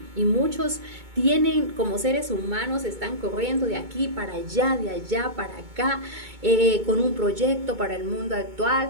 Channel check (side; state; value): left; late; 2.2 ms